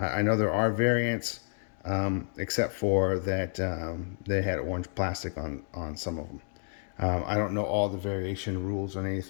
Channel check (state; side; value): silent; right; digital silence